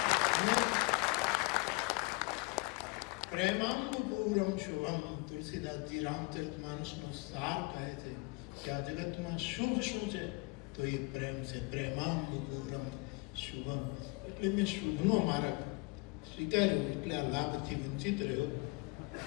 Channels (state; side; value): quieter; right; 27.5 dB